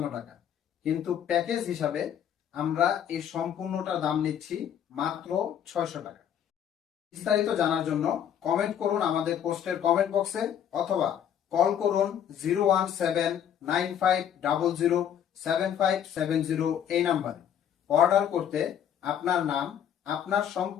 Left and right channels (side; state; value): right; quieter; 9.4 dB